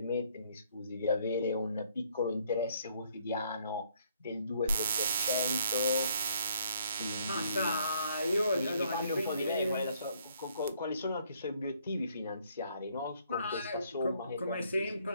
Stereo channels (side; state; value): both; inverted; correlation -0.66